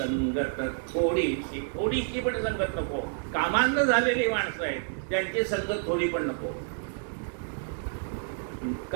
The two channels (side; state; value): left; silent; digital silence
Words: थोडीशी, थोडीशी पण संगत नको. कामांध झालेली माणसं आहेत, त्यांची संगत थोडी पण नको.